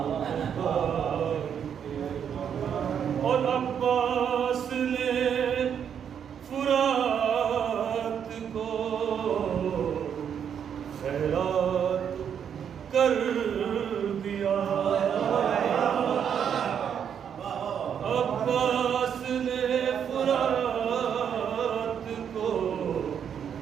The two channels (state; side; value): quieter; left; 8.2 dB